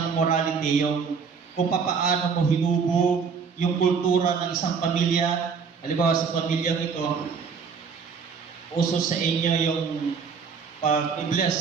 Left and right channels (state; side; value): quieter; left; 5.8 dB